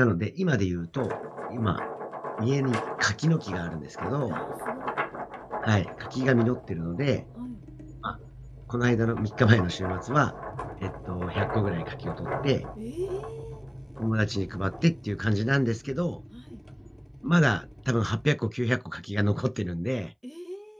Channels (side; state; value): both; identical; correlation 1.00